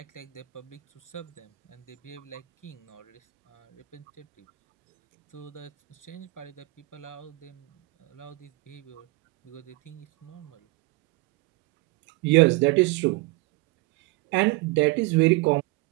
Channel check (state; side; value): quieter; left; 22.0 dB